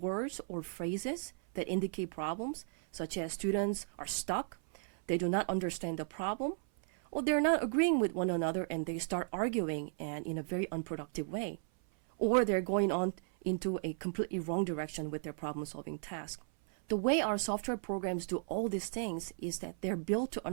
words or phrases that indicate problems, such as students are stuck, they do not understand the problem, or they're not agreeing with one another and they start arguing and in a very unproductive way. Or they're going on into a completely wrong direction with their problem-solving task. The way our software programs do all these things is that they're built to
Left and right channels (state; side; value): silent; left; 54 dB below the other